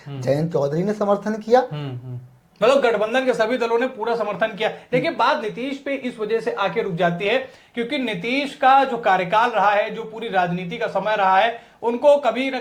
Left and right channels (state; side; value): identical; both; correlation 1.00